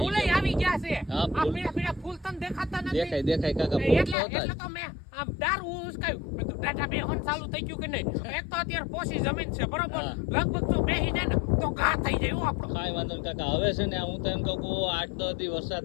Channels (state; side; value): drops out; right; at 4.2 s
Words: ફૂલે જાય. આવી ગયા છે. હા, આ ફૂલ. પીળા પીળા ફૂલ તને દેખાતા નથી. દેખાય દેખાય કાકા, ફૂલ એટલે તો હતા જ. એટલે તો મેં આમ દારૂ ઉસકાયું. મેં કીધું દાઢા બેહવાનું ચાલુ થઈ ગયું કે નહીં. એક તો અત્યારે પોસી જમીન છે બરોબર, હા. લગભગ જો બેહી જાય ને તો ઘા થઈ જાય હો આપણો. કાંઈ વાંધો નહીં કાકા. હવે છે ને હું તો એમ કહું કે 8-10 દી